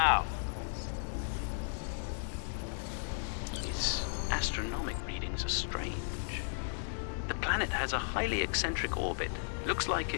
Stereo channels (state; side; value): silent; right; digital silence